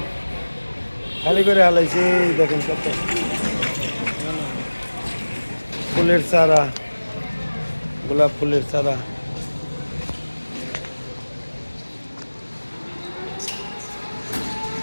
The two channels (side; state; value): both; inverted; correlation -1.00